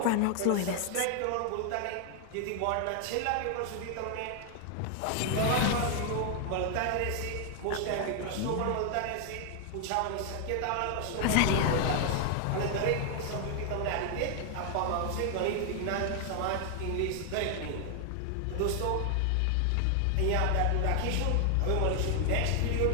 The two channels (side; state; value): both; different; correlation 0.00